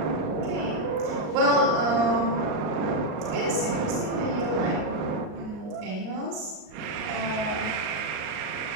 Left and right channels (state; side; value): late; left; 38 ms